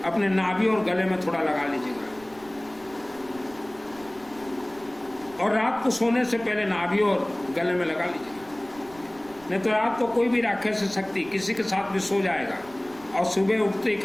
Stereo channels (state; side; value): noise; right; rumble, 23 dB below the sound